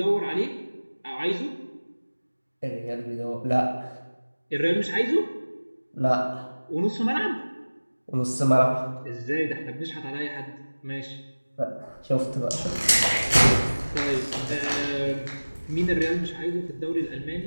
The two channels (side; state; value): both; inverted; correlation -1.00